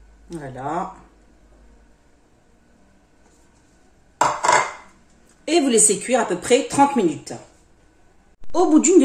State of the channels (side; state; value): both; identical; correlation 1.00